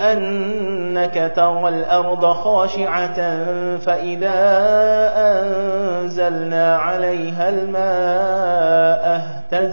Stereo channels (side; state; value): both; inverted; correlation -1.00